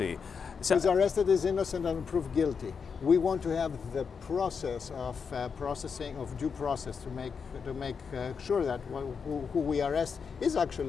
who is arrested is innocent and proved guilty. We want to have the process of processing of due process to make sure that who we arrest is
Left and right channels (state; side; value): quieter; right; 6.0 dB